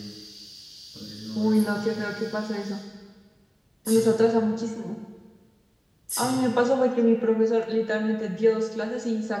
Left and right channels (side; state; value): both; identical; correlation 1.00